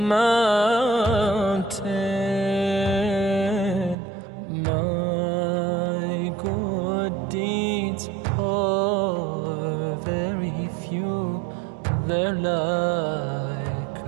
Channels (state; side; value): drops out; left; at 4.0 s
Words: My good deeds are very few. They're like